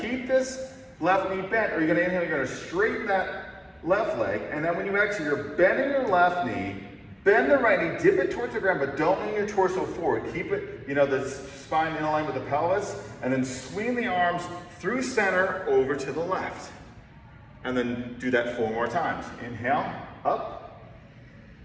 keep this left knee bent or you're gonna inhale, you're gonna straighten that left leg. And then when you exhale, you're bending your left knee, bend the right knee, dip it towards the ground, but don't lean your torso forward. Keep it, the spine in line with the pelvis, and then swing the arms through center over to the left. And then do that 4 more times. Inhale, up,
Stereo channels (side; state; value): both; identical; correlation 1.00